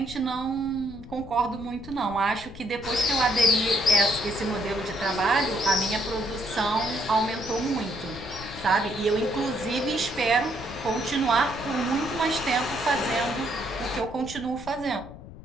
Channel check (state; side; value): noise; left; rumble, 15 dB below the sound